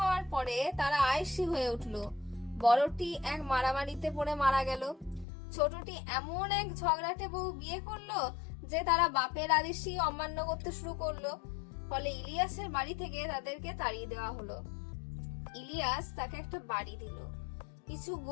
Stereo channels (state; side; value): drops out; right; at 5.2 s